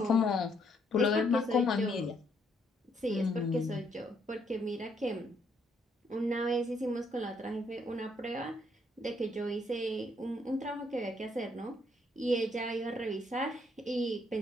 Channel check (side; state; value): both; normal; correlation 0.71